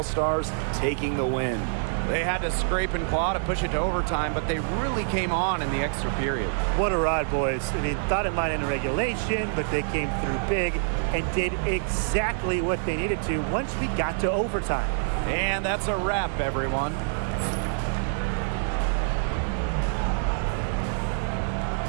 taking the win. They had to scrape and claw to push it to overtime, but they really came on in the extra period. What a ride, boys. I mean, thought it might end in regulation, but they came through big and did exactly what they needed to once we got to overtime. And that's a wrap, everyone.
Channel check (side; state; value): left; silent; digital silence